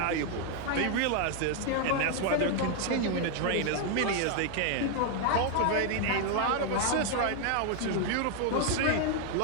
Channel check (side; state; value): both; different; correlation 0.00